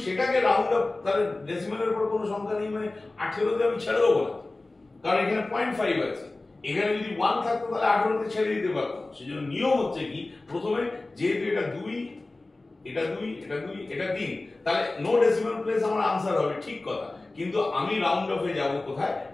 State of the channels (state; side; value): quieter; right; 3.1 dB